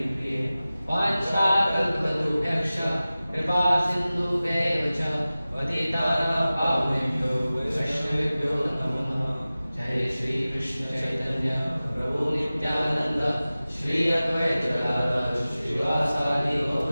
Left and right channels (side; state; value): both; inverted; correlation -0.97